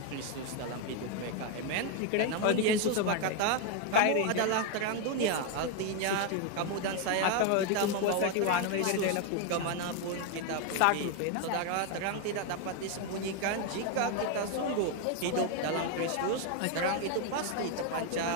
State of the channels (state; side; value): different; both; correlation 0.01